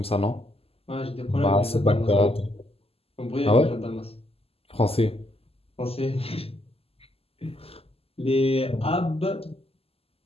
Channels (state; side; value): late; right; 0.28 ms